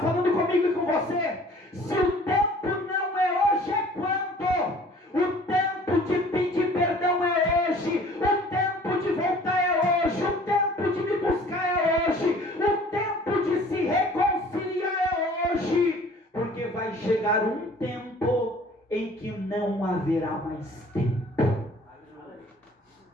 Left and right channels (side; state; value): both; normal; correlation 0.51